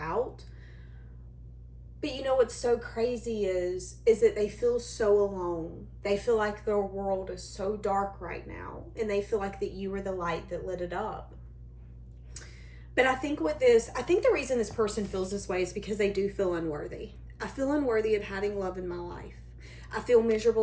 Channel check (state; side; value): identical; both; correlation 1.00